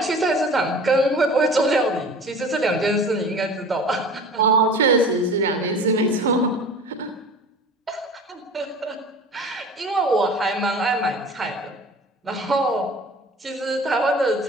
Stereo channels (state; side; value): normal; both; correlation 0.40